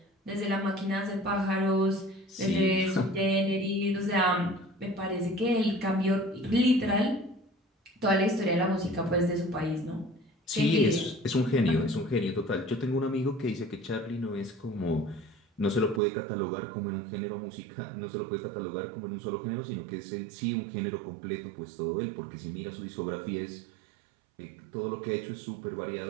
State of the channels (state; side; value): drops out; left; at 16.0 s